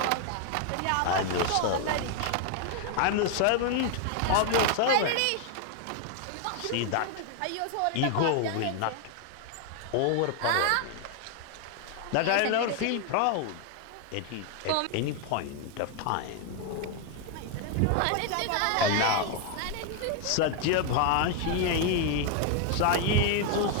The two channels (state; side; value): different; both; correlation 0.00